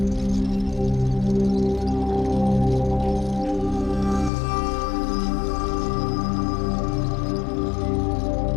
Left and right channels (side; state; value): right; drops out; at 4.3 s